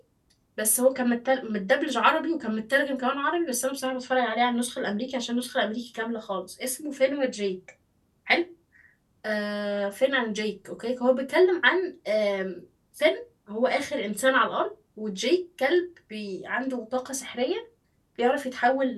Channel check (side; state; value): both; identical; correlation 1.00